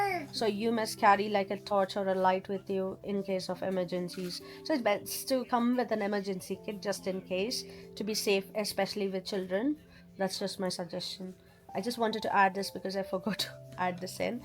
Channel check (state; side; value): identical; both; correlation 1.00